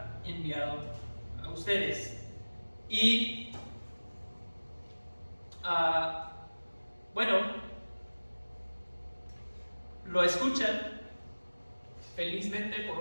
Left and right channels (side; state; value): both; inverted; correlation -1.00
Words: enviado a ustedes. Y bueno, lo escuchan felizmente por